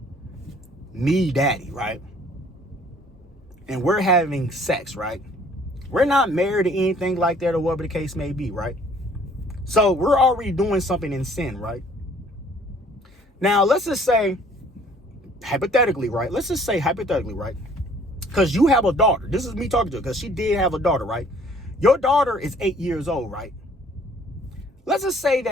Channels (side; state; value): both; normal; correlation 0.57